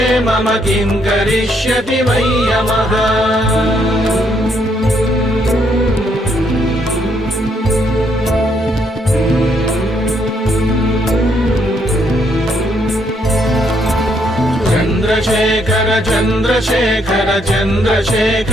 मम किं करिष्यति वै यमः चन्द्रशेखर चन्द्रशेखर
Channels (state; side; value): normal; both; correlation 0.72